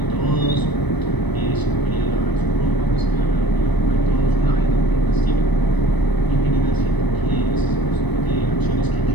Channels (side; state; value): right; late; 1.0 ms